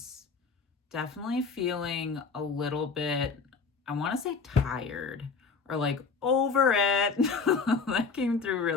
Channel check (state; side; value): quieter; right; 4.9 dB